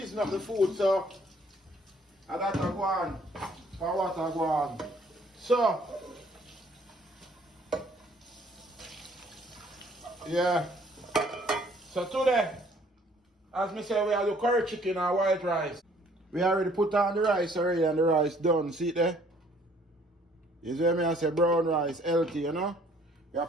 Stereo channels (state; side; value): normal; both; correlation 0.60